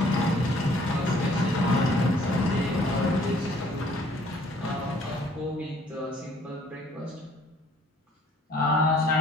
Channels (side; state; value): both; normal; correlation 0.59